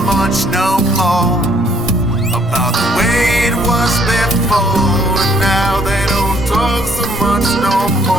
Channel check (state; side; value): normal; both; correlation 0.64